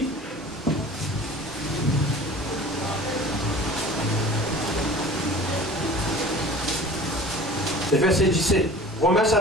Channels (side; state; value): both; normal; correlation 0.43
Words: Le verset 17. Romains